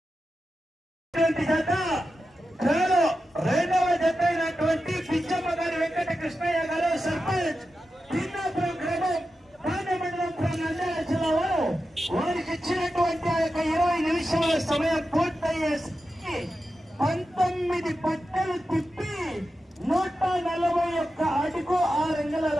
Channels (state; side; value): normal; both; correlation 0.91